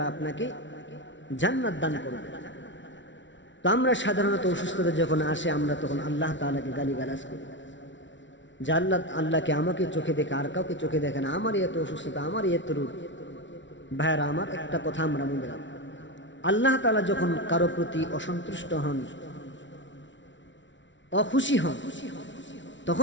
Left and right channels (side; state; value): right; late; 0.55 ms